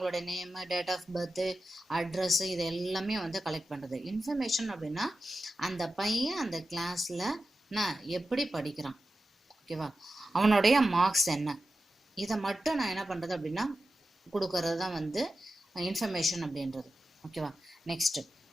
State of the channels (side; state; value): both; normal; correlation 0.93